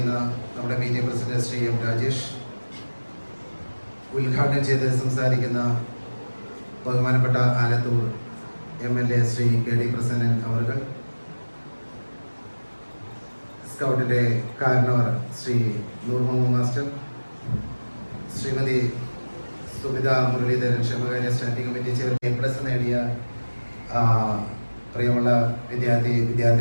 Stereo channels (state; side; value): inverted; both; correlation -1.00